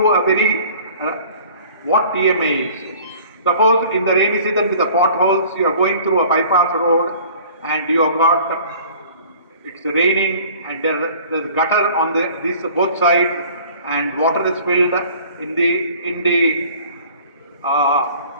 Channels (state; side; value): inverted; both; correlation -0.49